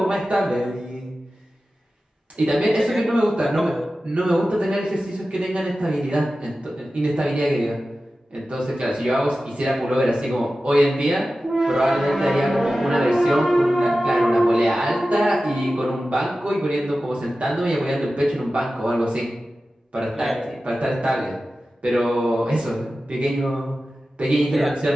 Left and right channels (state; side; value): normal; both; correlation 0.94